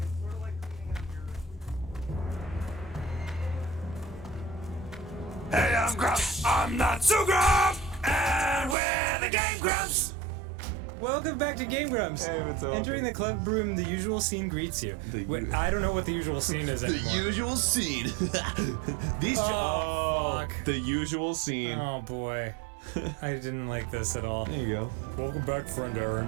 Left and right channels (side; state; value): left; drops out; at 8.8 s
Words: it's sort of like cleaning out your... Hey, I'm Grumps. I'm not so Grump. And we're the Game Grumps. Welcome back to Game Grumps. Hey, what's up? Entering the club room, the usual scene greets you. Wait, I don't know what the usual scene is anymore. usual scene. These Oh, fuck. The usual scene. Oh boy. I didn't like this at all. There you go. Welcome back, friend